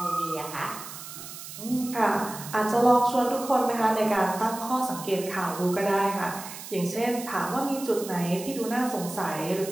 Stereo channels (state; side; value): noise; right; hiss, 12 dB below the sound